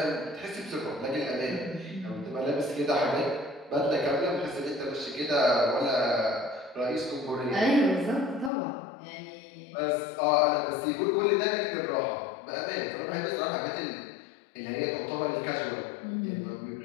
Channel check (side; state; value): right; drops out; at 8.5 s